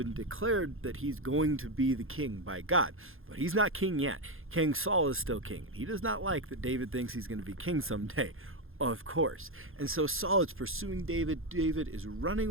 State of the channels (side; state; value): left; late; 0.60 ms